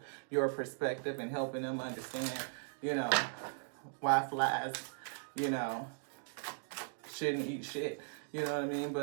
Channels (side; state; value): left; silent; digital silence